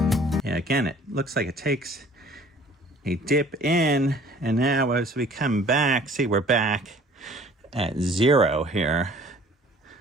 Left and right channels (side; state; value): both; normal; correlation 0.52